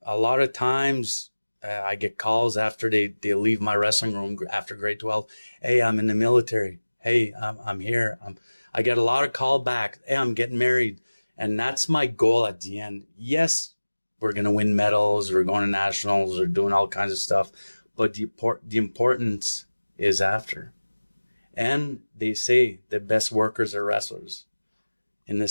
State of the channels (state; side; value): inverted; both; correlation -1.00